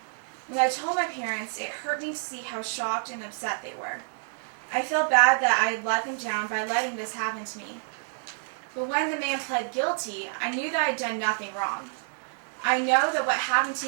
When I told my parents, it hurt me to see how shocked and upset they were. I felt bad that I had let them down by letting this happen to me. But when the man pled guilty, I knew that I had done nothing wrong. I know that what happened to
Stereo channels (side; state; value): left; silent; digital silence